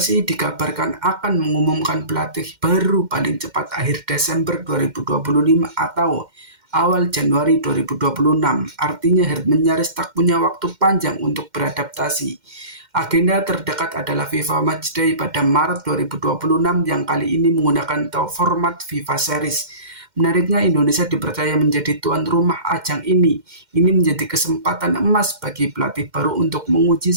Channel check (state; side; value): late; left; 2.1 ms